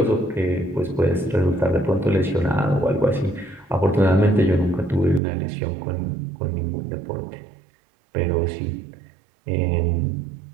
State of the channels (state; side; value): drops out; left; at 5.2 s